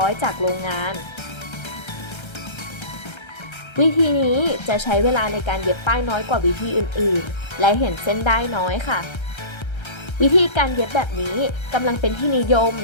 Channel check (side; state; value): right; late; 1.3 ms